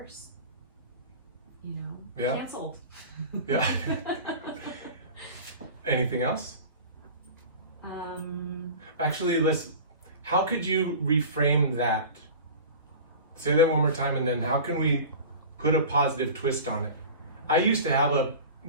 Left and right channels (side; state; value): both; inverted; correlation -0.36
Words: You know, Yeah. canceled. Yeah. Anything else? Actually, how could you reframe that? Say that one more time, and then how can we put a positive twist on it? I used to have